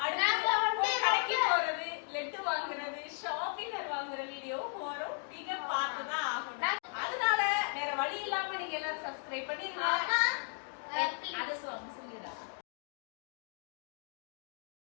அடுத்து கடைக்கு போறது, லெட்டு வாங்குறது, ஷாப்பினர் வாங்குற வீடியோ வரும். நீங்க பார்த்துதான் ஆகணும். அதனால வேற வழி இல்லாம நீங்க எல்லாரும் சப்ஸ்கிரைப் பண்ணிருங்க. அது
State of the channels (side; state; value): right; silent; 54 dB below the other